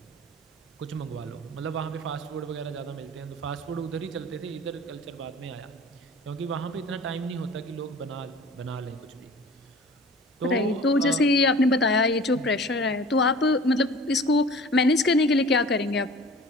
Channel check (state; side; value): normal; both; correlation 0.43